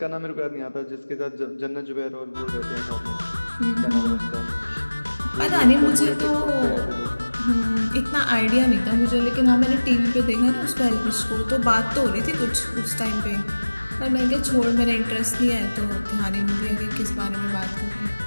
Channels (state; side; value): inverted; both; correlation -1.00